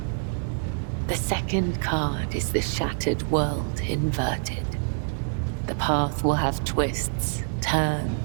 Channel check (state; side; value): silent; left; digital silence